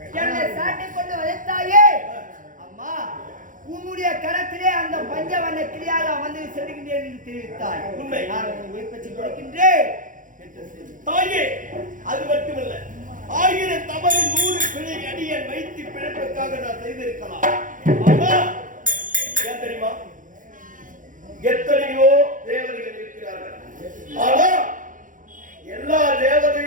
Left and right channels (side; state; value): left; late; 0.38 ms